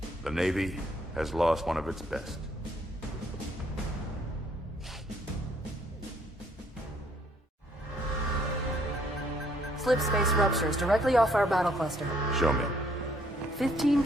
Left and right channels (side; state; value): both; normal; correlation 0.66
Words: The Navy has lost one of its best. Slip space ruptures directly off our battle cluster. Show me. 15